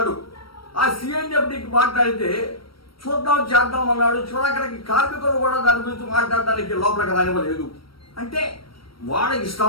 ఆ సిఎన్డిఎఫ్డికి మాట్లాడితే చూద్దాం చేద్దాం అన్నాడు. చివరికి కార్మికులు కూడా దాని గురించి మాట్లాడడానికి లోపలికి రానివ్వలేదు. అంటే వాడు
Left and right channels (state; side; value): late; right; 0.75 ms